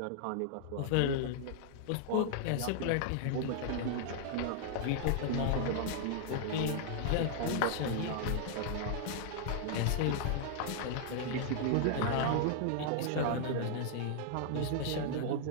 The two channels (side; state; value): both; different; correlation -0.01